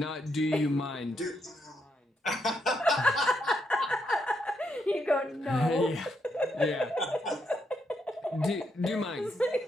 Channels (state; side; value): normal; both; correlation 0.79